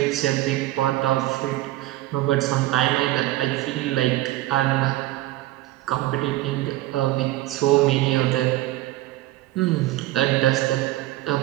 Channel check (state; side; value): quieter; left; 16.7 dB